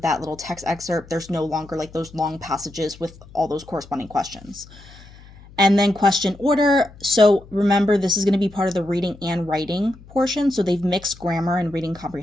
little text excerpt. There's no longer like those long passages with all those corresponding questions. And then question order. So remember, this is going to be part of the reading and writing portion. So they've mixed grammar and reading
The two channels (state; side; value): noise; left; hum, 21 dB below the sound